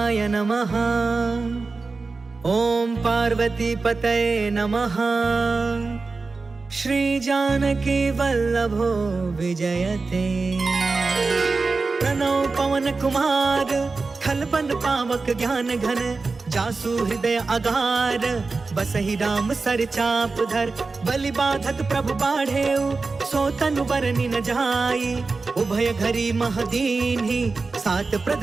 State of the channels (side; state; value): left; quieter; 4.0 dB